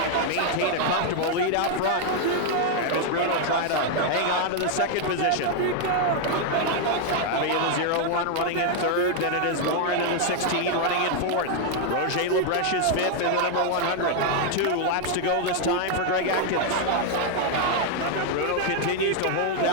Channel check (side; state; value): both; different; correlation 0.00